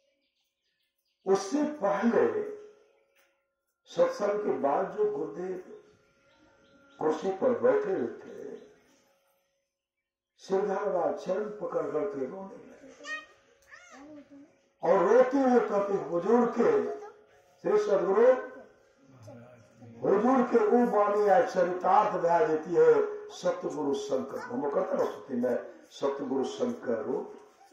उससे पहले सत्संग के बाद जो गुरुदेव कुर्सी पर बैठे हुए थे, सिरधारवा चरण पकड़ करके रोने लगे और रोते हुए कहते हुजूर के श्री सदगुरु हुजूर के वो वाणी चरितार्थ बहा देती है सतगुरु शंकर। हम कहते ना स्तुति में सतगुरु शंकर रूप,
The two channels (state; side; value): identical; both; correlation 1.00